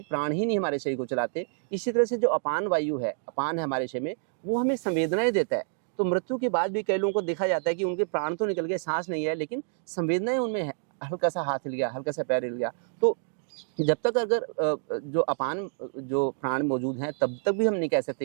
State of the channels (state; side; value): silent; left; digital silence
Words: प्राण ही नहीं हमारे शरीर को चलाते। इसी तरह से जो अपान वायु है, अपान है हमारे शरीर में, वो हमें संवेदनाएं देता है। तो मृत्यु के बाद भी कई लोगों को देखा जाता है कि उनके प्राण तो निकल गए, सांस नहीं है, लेकिन संवेदनाएं उनमें है। हल्का सा हाथ हिल गया, हल्का सा पैर हिल गया। तो जब तक अगर जो अपान जो प्राण मौजूद हैं तब तक भी हम नहीं कह